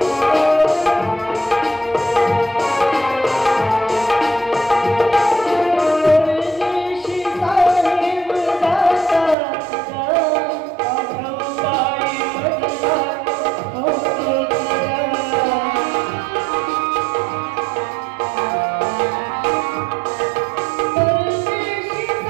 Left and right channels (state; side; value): drops out; left; at 9.3 s